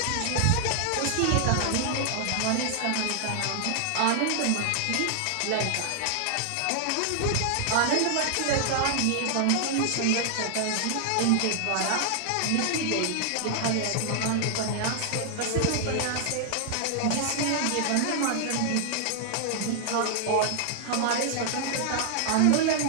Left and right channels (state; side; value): different; both; correlation 0.00